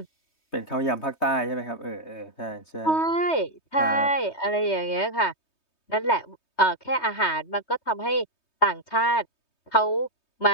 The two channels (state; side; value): late; right; 3.2 ms